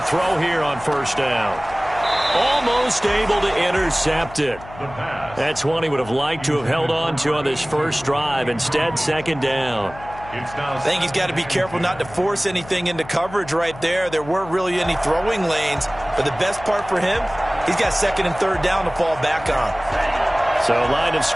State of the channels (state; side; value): noise; left; hum, 17 dB below the sound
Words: throw here on first down. Almost able to intercept it. That's one he would have liked to have held on to on this first drive. Instead, second down. I think he's got to be careful not to force anything into coverage right there. There weren't really any throwing lanes. But the best part for him, he's got second and third down to fall back on. So line of